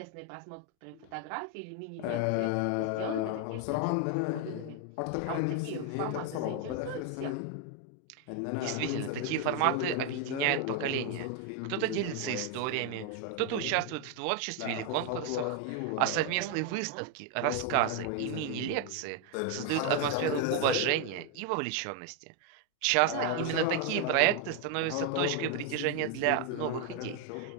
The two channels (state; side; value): different; both; correlation 0.01